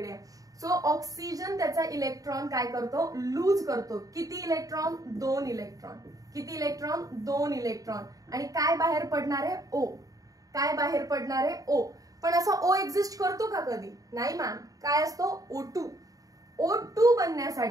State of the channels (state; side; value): late; left; 0.17 ms